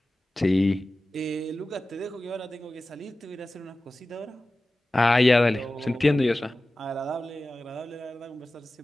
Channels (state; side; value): normal; both; correlation 0.96